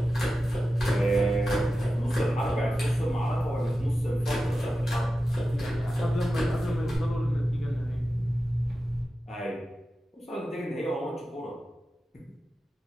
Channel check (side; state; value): both; normal; correlation 0.93